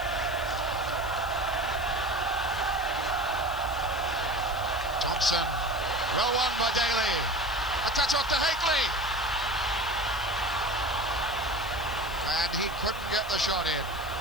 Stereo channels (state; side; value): noise; left; hiss, 18 dB below the sound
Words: Thompson, well won by Daly. A touch off to Higley. And he couldn't get the shot in.